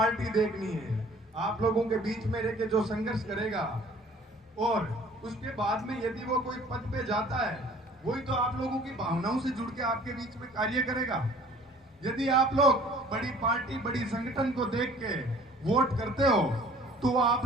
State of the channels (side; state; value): both; normal; correlation 0.51